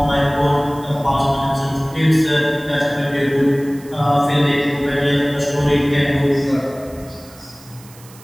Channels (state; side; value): noise; right; hiss, 23 dB below the sound